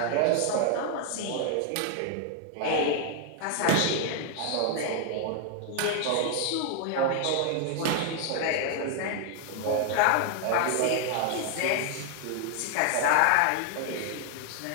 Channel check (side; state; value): both; different; correlation 0.00